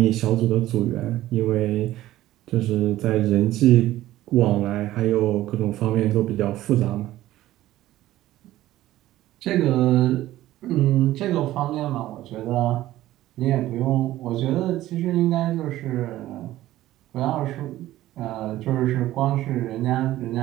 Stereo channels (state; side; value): quieter; left; 15.0 dB